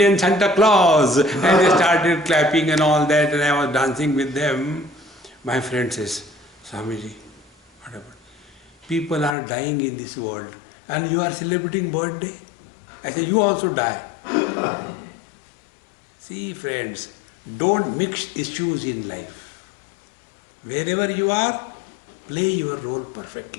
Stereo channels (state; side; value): drops out; right; at 9.3 s